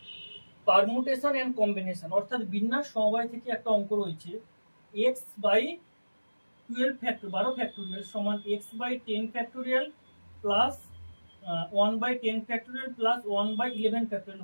permutation and combination অর্থাৎ বিন্যাস সমবায় থেকে একটা অঙ্ক রয়েছে এক্স বাই 12 ফ্যাক্টর 12 ফ্যাক্টোরিয়াল সমান x by 10 factorial plus 1 by 10 factorial plus 1 by 11 factorial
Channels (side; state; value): both; inverted; correlation -1.00